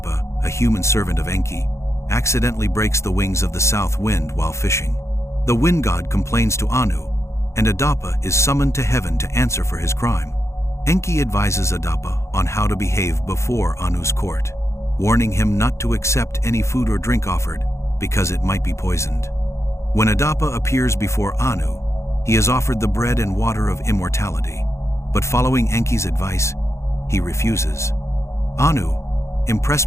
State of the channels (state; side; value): late; right; 0.14 ms